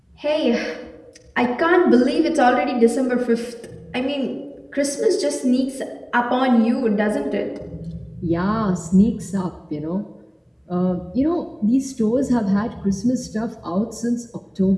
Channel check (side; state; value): both; identical; correlation 1.00